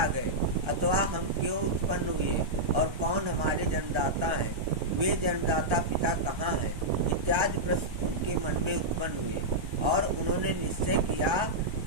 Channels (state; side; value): late; left; 1.3 ms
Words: गए अथवा हम क्यों उत्पन्न हुए और कौन हमारे जन्मदाता हैं? वे जन्मदाता पिता कहाँ हैं? इत्यादि प्रश्न उनके मन में उत्पन्न हुए और उन्होंने निश्चय किया